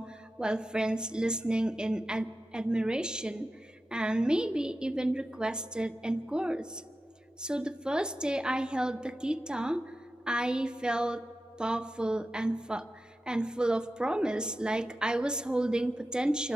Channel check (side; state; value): both; normal; correlation 0.92